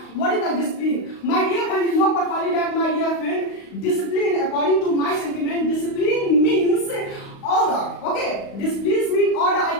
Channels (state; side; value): late; right; 35 ms